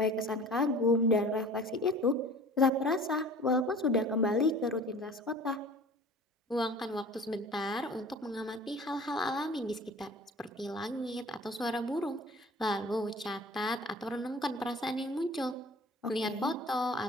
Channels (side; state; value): both; normal; correlation 0.44